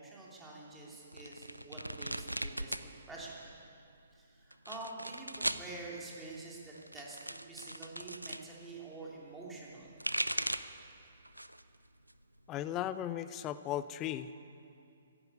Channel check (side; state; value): both; inverted; correlation -0.54